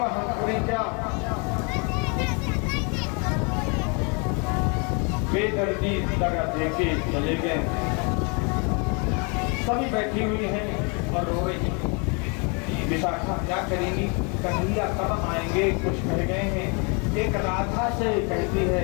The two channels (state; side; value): quieter; right; 34.0 dB